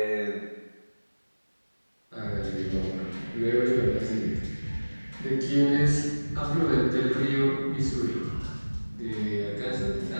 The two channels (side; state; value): both; inverted; correlation -1.00